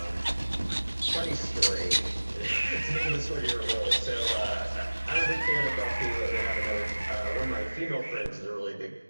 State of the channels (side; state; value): both; inverted; correlation -1.00